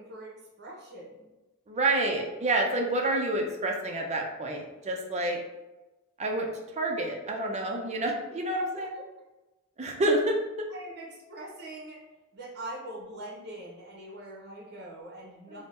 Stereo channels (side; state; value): both; normal; correlation -0.01